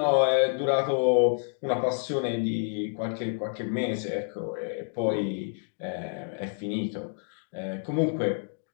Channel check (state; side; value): silent; right; digital silence